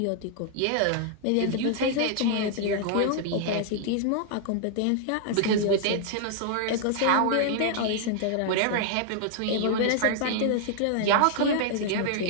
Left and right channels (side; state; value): both; different; correlation -0.01